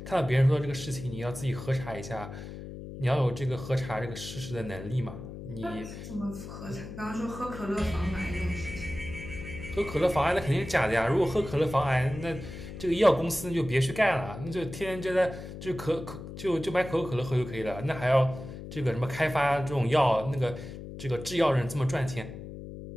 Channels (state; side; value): noise; left; hum, 11 dB below the sound